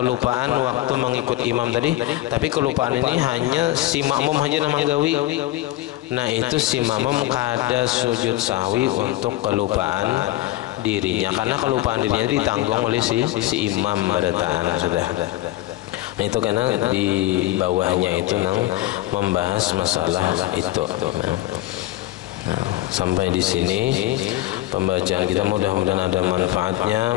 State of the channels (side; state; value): right; quieter; 16.4 dB